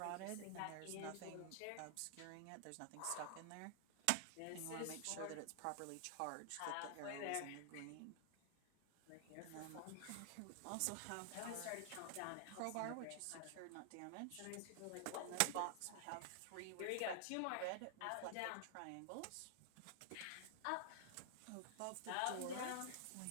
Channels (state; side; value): different; both; correlation 0.00